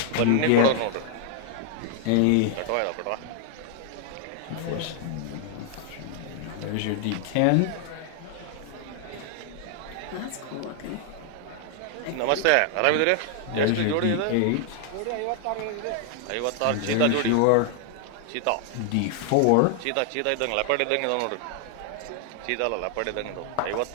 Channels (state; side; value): different; both; correlation 0.00